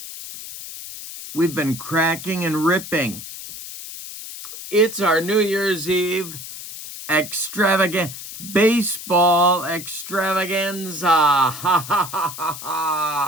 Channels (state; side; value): noise; left; hiss, 11 dB below the sound